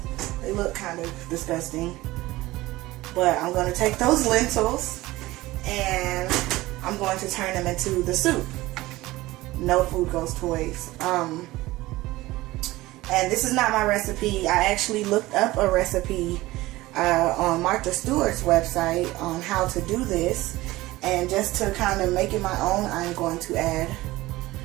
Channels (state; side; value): quieter; left; 18.5 dB